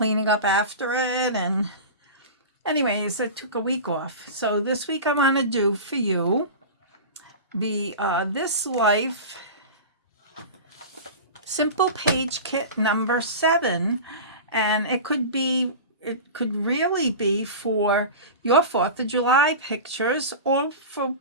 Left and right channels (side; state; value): both; inverted; correlation -0.30